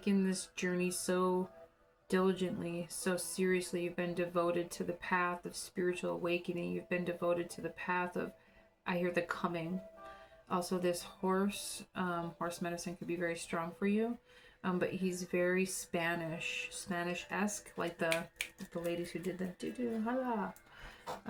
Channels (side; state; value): both; identical; correlation 1.00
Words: this journey so diligently, so seriously. You've been devoted to the path of spiritual awakening. You've been devoted to the path of, I hear the coming. Also this horse medicine could be very strong for you. But he's very Spanish-esque, like the ladies who did the do-do, hala.